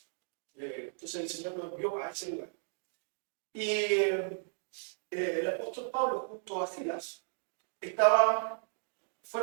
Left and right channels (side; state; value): left; silent; digital silence